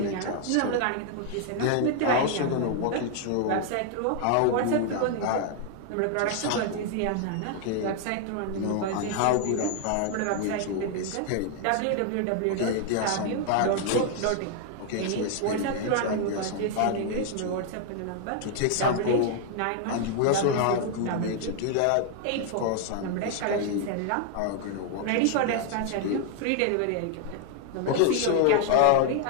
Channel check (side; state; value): both; different; correlation 0.00